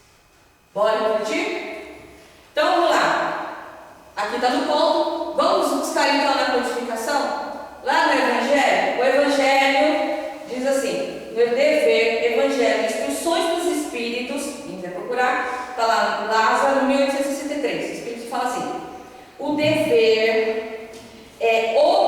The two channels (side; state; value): both; identical; correlation 1.00